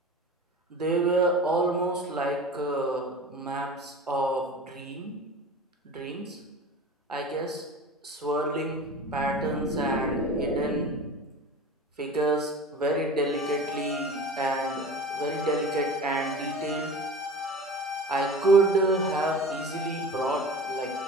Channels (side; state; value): both; normal; correlation 0.36